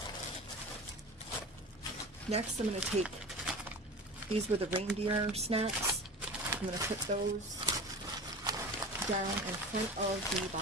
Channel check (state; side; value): normal; both; correlation 0.33